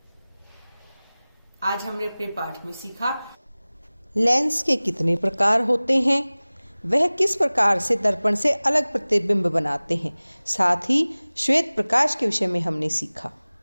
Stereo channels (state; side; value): inverted; both; correlation -0.99